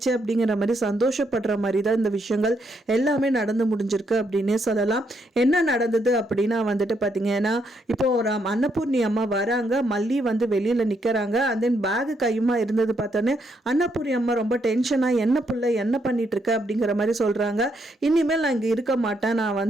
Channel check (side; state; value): both; normal; correlation 0.76